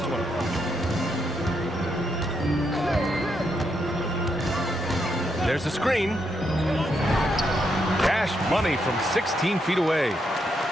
one. There's a screen. Cash money from 16 feet away.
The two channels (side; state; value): both; normal; correlation 0.79